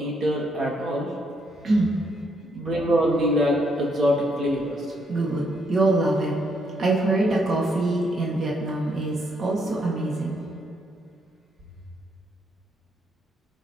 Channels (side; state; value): both; normal; correlation 0.74